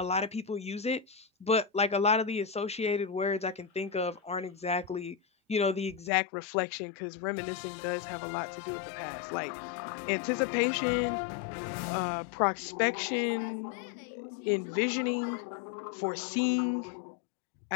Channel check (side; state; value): right; drops out; at 6.1 s